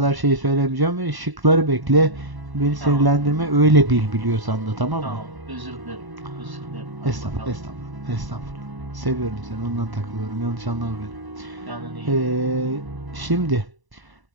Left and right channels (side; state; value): left; late; 1.0 ms